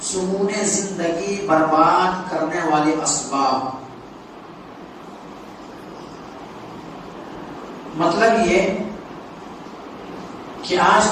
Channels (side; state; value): both; identical; correlation 1.00